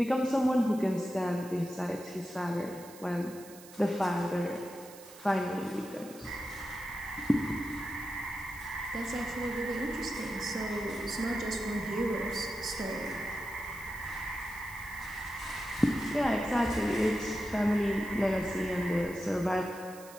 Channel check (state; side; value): noise; right; hiss, 19 dB below the sound